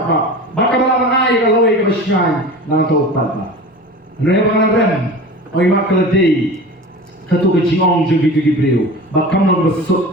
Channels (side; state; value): both; normal; correlation 0.35